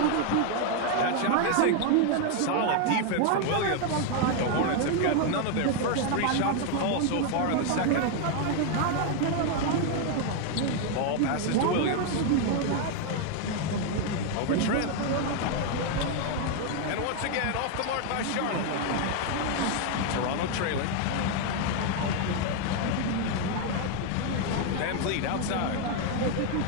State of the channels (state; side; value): different; both; correlation 0.01